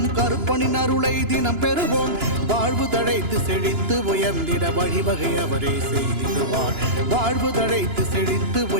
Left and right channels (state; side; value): late; left; 2.9 ms